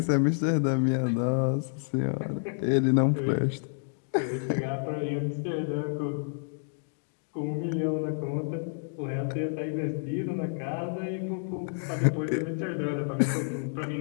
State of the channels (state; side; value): silent; right; digital silence